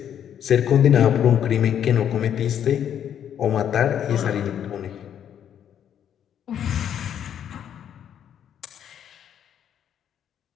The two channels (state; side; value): quieter; right; 9.4 dB